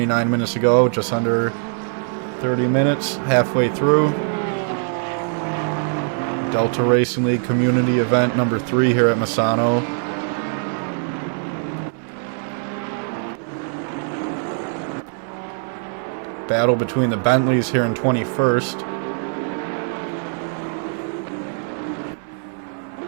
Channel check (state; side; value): silent; left; 58 dB below the other